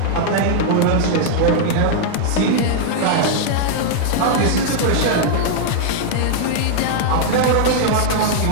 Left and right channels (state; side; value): different; both; correlation -0.01